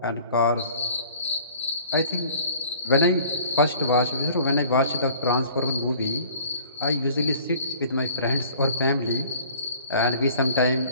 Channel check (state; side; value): inverted; both; correlation -0.50